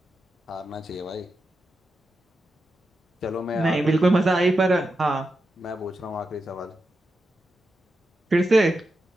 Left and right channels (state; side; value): normal; both; correlation 0.88